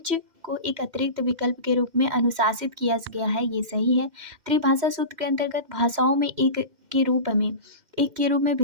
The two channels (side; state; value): left; late; 2.1 ms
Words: को एक अतिरिक्त विकल्प के रूप में अनुशासित किया गया है, ये सही है। त्रिभाषा सूत्र के अंतर्गत भाषाओं में एक के रूप में